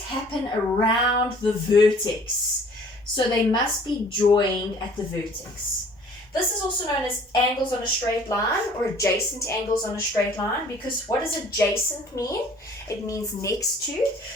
happen around the vertex. So they must be joined at the vertex. This is also known as angles on a straight line or adjacent angles on a straight line, because what does adjacent mean? It means next to.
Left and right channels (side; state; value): both; normal; correlation 0.53